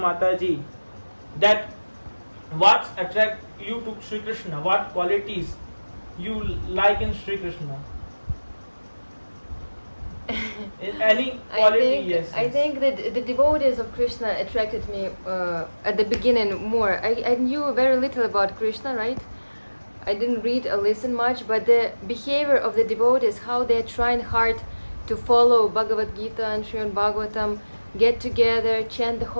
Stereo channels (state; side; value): inverted; both; correlation -1.00